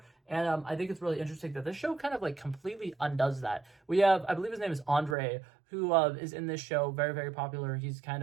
And I think it's really interesting that this show kind of like completely undoes that. We have, I believe his name is Andre, who is in this show, very, very popular. He's kind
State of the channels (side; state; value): left; drops out; at 5.2 s